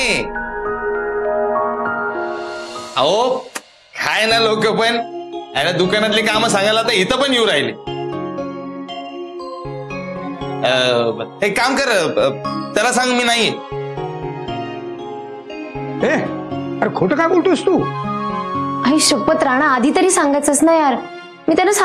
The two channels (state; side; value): identical; both; correlation 1.00